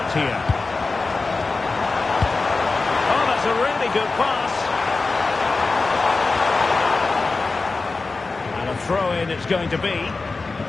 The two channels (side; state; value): right; quieter; 3.8 dB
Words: here. A really good pass. And a throw-in it's going to be. Plenty